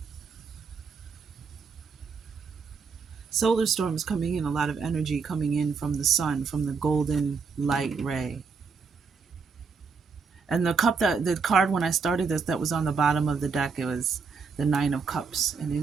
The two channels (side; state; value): left; quieter; 5.2 dB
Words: Solar storms coming in, a lot of energy coming in from the sun, from the golden light ray. And the card when I started this, that was on the bottom of the deck, it was the Nine of Cups. And